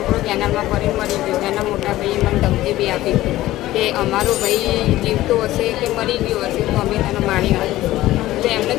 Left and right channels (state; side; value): quieter; right; 15.9 dB